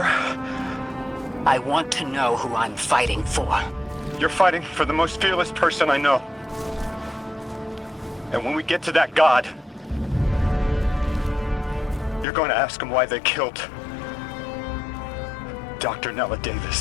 I want to know who I'm fighting for. You're fighting for the most fearless person I know. And when we get to that god, you're going to ask him why they killed Dr. Nella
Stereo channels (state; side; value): drops out; right; at 12.2 s